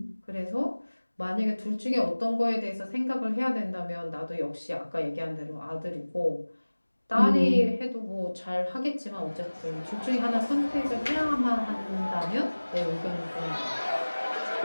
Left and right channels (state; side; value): inverted; both; correlation -1.00